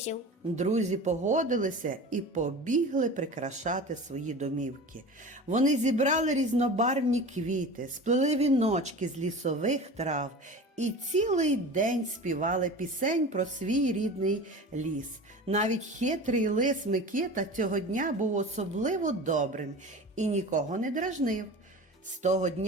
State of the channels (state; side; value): normal; both; correlation 0.34